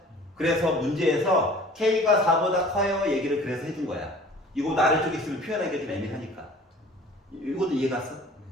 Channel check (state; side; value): normal; both; correlation 0.47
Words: 그래서 문제에서 K가 4보다 커요 얘기를 그래서 해준 거야. 이거 아래쪽에 있으면 표현하기가 좀 애매하니까. 이것도 이해 갔어?